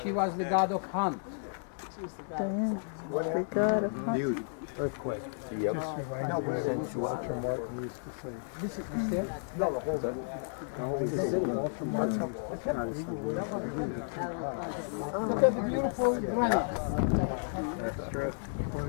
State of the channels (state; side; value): silent; right; digital silence